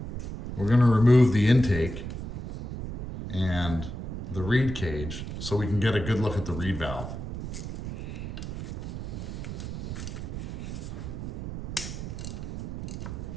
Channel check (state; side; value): noise; right; rumble, 6 dB below the sound